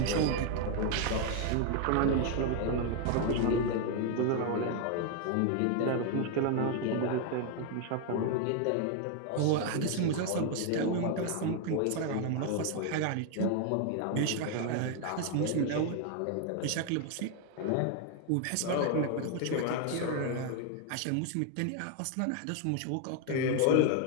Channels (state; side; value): different; both; correlation 0.01